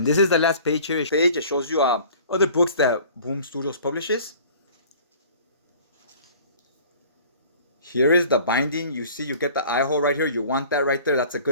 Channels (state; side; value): inverted; both; correlation -0.48